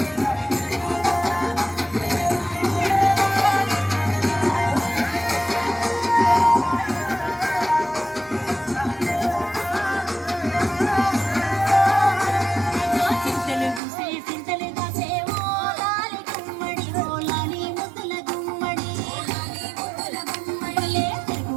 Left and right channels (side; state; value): left; drops out; at 13.8 s